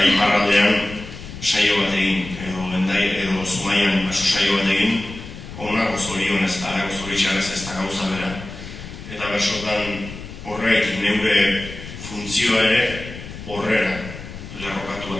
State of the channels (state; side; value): noise; left; rumble, 12 dB below the sound